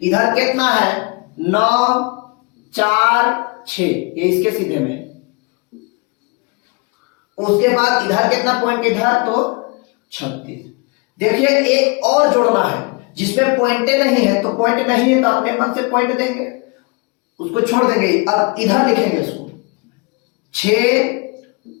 इधर कितना है 9 4 6, ये इसके सीधे में। उसके बाद इधर कितना पॉइंट इधर तो 36। देखिए एक और जोड़ना है जिसमें पॉइंटे नहीं है, तो पॉइंट नहीं है तो अपने मन से पॉइंट देंगे, उसको छोड़ देंगे। अब इधर लिखेंगे इसको 6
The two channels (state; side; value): quieter; right; 29.2 dB